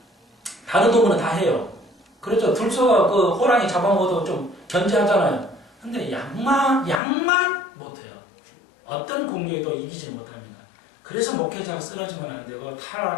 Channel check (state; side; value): drops out; right; at 7.0 s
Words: 다른 동물은 다 해요. 그렇죠. 들소가 그 호랑이 잡아먹어도 좀 견제하잖아요. 근데 양만 못해요. 어떤 공격에도 이기지 못합니다. 그래서 목회자가 쓰러지면 안 되고